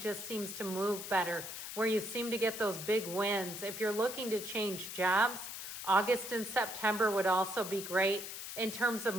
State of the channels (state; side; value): noise; left; hiss, 8 dB below the sound